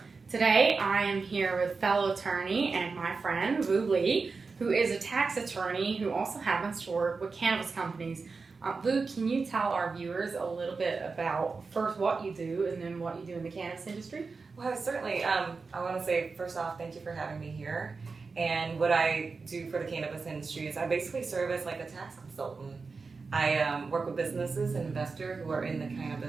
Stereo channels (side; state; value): left; quieter; 4.5 dB